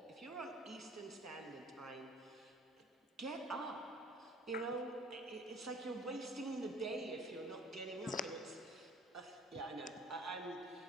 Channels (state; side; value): normal; both; correlation 0.51